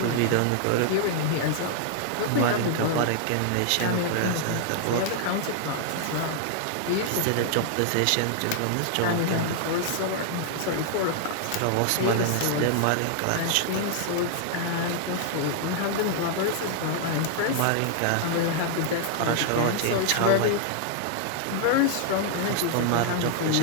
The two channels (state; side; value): different; both; correlation -0.01